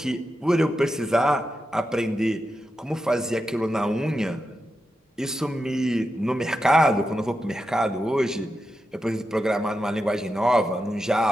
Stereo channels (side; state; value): both; normal; correlation 0.88